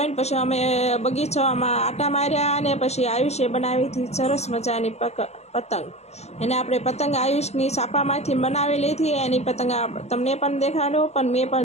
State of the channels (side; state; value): right; late; 0.31 ms